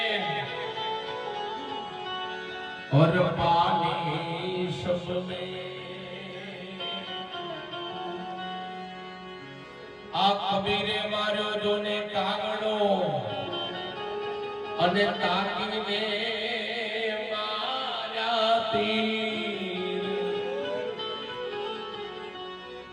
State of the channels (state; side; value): identical; both; correlation 1.00